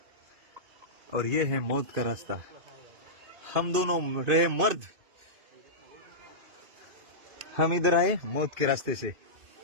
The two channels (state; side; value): late; left; 2.6 ms